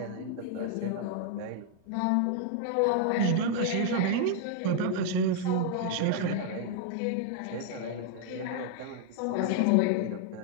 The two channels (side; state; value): both; different; correlation 0.00